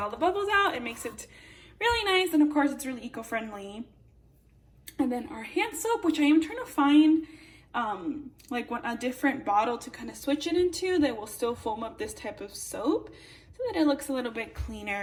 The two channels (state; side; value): identical; both; correlation 1.00